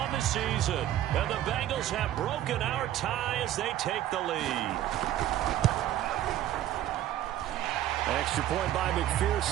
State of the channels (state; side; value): quieter; left; 12.6 dB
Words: the season. And the Bengals have broken our tie as they take the lead. Extra point by